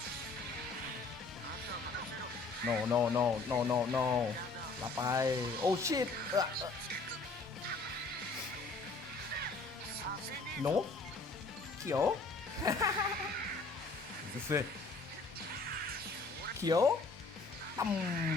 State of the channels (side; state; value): right; quieter; 3.7 dB